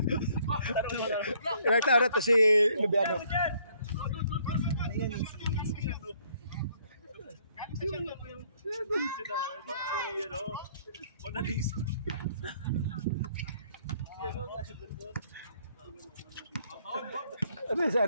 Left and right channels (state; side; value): inverted; both; correlation -0.65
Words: Ilang taon na to si Lubiano. Ano si